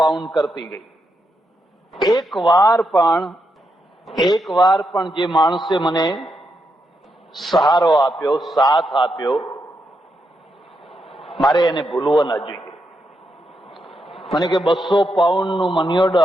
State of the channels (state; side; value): normal; both; correlation 0.82